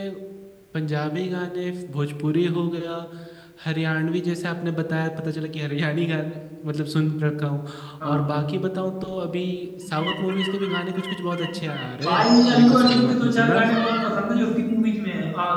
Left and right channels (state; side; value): identical; both; correlation 1.00